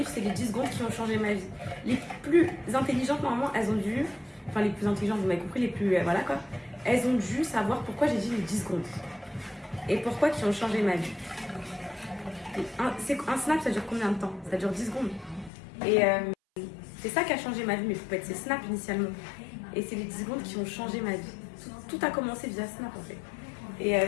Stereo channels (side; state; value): right; drops out; at 15.5 s